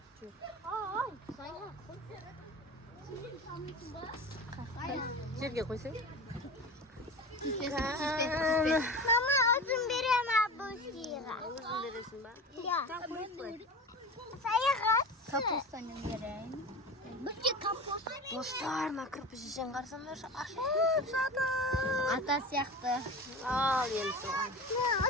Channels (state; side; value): normal; both; correlation 0.31